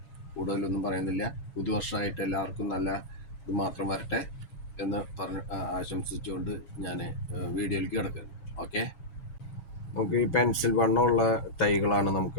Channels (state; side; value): late; right; 7.3 ms